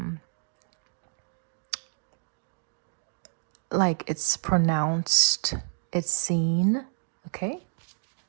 like it's pronounced, it's seen, okay?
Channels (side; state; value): left; silent; digital silence